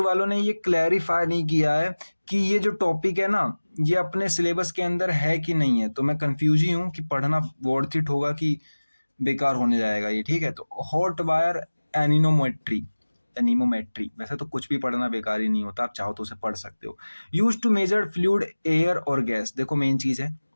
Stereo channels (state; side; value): inverted; both; correlation -1.00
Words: वालों ने ये क्लैरिफाई नहीं किया है कि ये जो टॉपिक है ना ये अपने सिलेबस के अंदर है कि नहीं है। तो मैं कंफ्यूज ही हूँ कि पढ़ना वर्थ इट होगा कि बेकार होने जाएगा ये, ठीक है। तो हॉट वायर एनीमोमेट्री, वैसे तो कुछ भी पढ़ना बेकार ही नहीं होता, आप चाहो तो उसे पढ़ सकते हो। Use to measure fluid, air और गैस। देखो मेन चीज है,